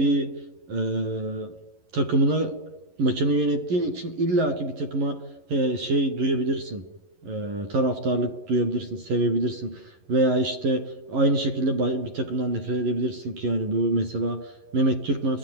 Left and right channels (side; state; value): left; late; 11 ms